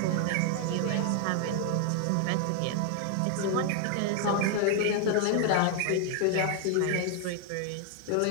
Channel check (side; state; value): both; different; correlation 0.00